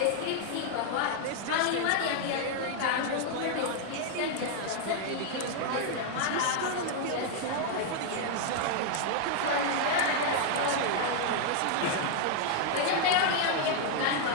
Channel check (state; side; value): different; both; correlation 0.00